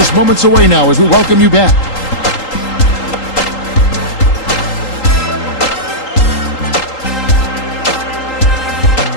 moments away now as we welcome you back.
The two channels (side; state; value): right; late; 3.8 ms